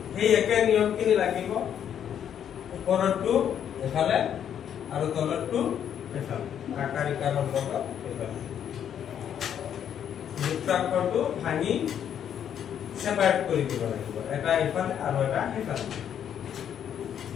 এই একে নিয়মখিনি লাগিব ওপৰটো এফালে আৰু তলৰটো এফালে আকাৰ ইকাৰৰ লগত এফালে যুক্তাক্ষৰটো ভাঙি সেপাৰেট কৰি দিব লাগিব এটা এফালে আৰু এটা এফালে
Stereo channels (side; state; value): right; quieter; 9.2 dB